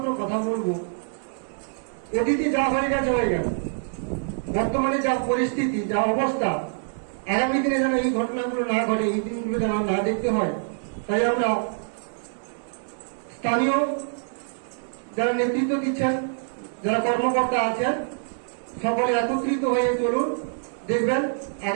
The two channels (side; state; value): left; silent; 61 dB below the other